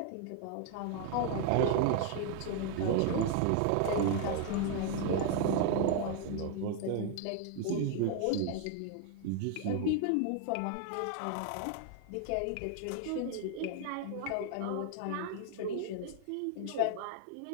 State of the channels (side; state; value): both; different; correlation 0.00